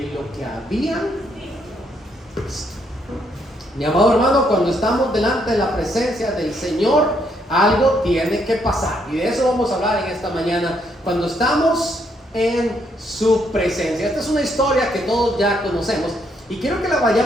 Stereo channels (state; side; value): normal; both; correlation 0.73